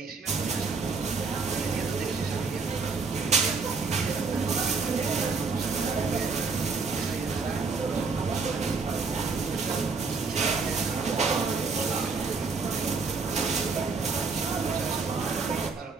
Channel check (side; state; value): left; quieter; 4.6 dB